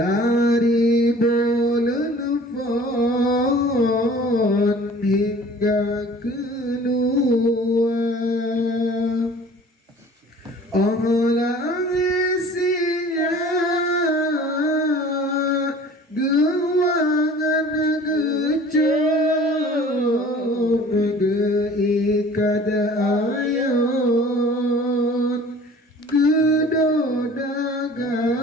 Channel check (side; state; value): both; normal; correlation 0.47